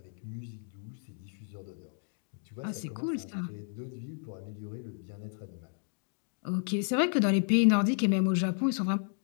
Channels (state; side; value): silent; right; 56 dB below the other